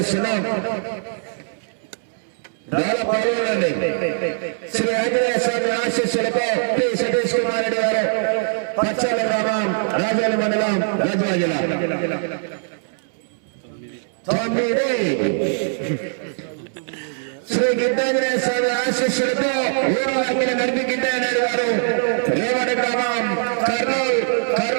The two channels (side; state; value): left; silent; 65 dB below the other